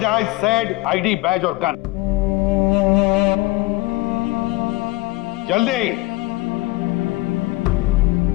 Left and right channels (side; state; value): right; quieter; 20.3 dB